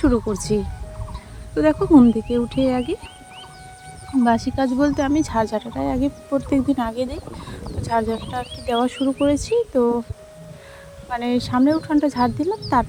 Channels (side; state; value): both; identical; correlation 1.00